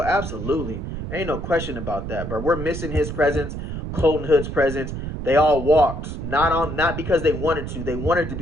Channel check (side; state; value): right; noise; rumble, 6 dB below the sound